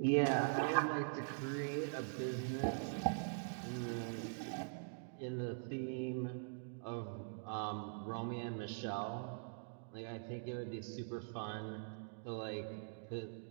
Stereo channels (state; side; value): silent; left; digital silence